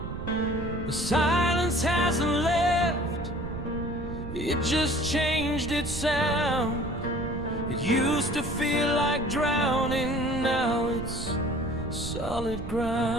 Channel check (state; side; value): noise; right; rumble, 8 dB below the sound